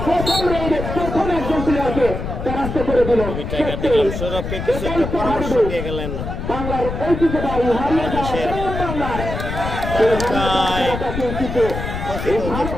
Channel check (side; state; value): left; noise; rumble, 5 dB below the sound